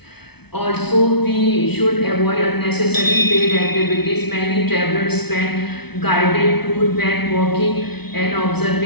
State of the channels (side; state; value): right; late; 0.98 ms